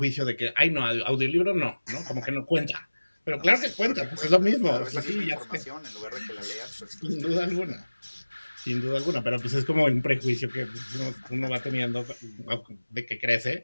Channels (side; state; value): both; inverted; correlation -1.00